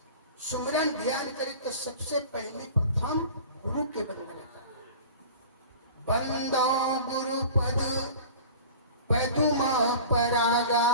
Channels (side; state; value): both; inverted; correlation -0.39